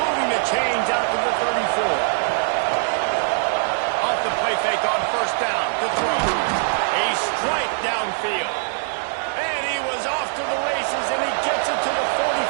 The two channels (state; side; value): silent; left; digital silence